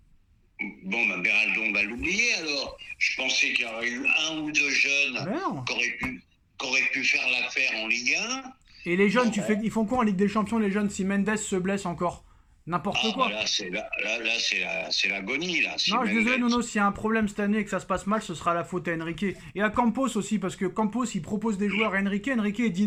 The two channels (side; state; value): both; identical; correlation 1.00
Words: Beraldo, on va l'oublier alors. Je pensais qu'il y aurait eu 1 ou 2 jeunes qui auraient pu faire l'affaire en Ligue 1. Et les jeunes, ils font quoi en Ligue des Champions, les jeunes, si Mendes se blesse encore? N'importe quoi. Là, c'est l'agonie, là. Non, je suis désolé, Nono, s'il y a un problème cette année et que ça se passe mal, ce sera la faute à Enrique. Et à Campos aussi, parce que Campos, il propose des joueurs à Enrique il dit